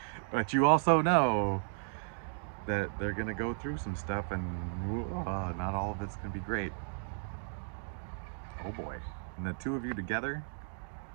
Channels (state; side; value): silent; left; digital silence